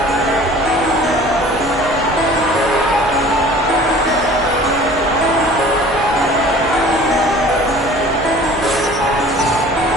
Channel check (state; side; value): normal; both; correlation 0.47